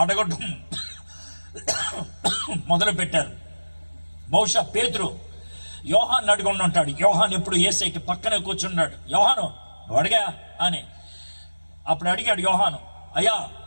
అడగడం మొదలు పెట్టారు. బహుశా పేతురు యోహాన్ అడుగుండి ఉంటాడు. యోహాన్ ఎప్పుడు యేసయ్యకి పక్కనే కూర్చున్నాడు. యోహాను అడిగా అని అప్పుడు అడిగాడు. యోహాను, అయ్యా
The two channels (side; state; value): both; inverted; correlation -1.00